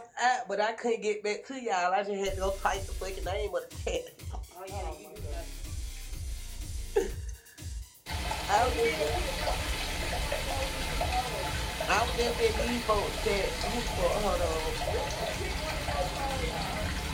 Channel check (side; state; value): both; identical; correlation 1.00